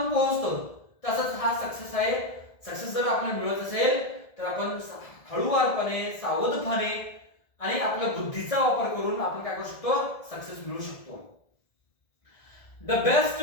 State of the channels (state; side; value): late; right; 1.7 ms